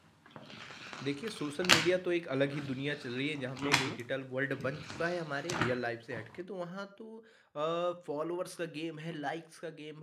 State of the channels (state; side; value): identical; both; correlation 1.00